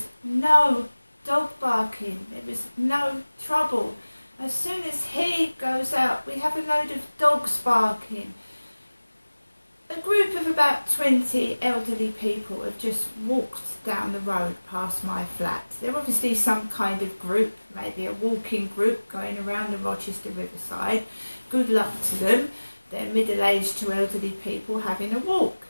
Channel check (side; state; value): both; inverted; correlation -1.00